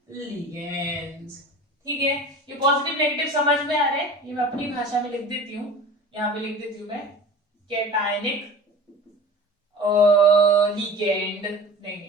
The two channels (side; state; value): both; normal; correlation 0.38